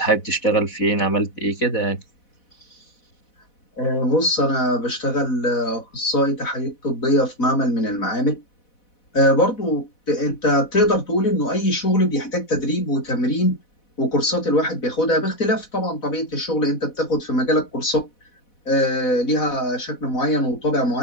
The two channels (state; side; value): late; right; 4.1 ms